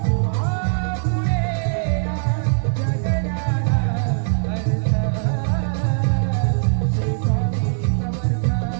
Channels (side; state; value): left; silent; digital silence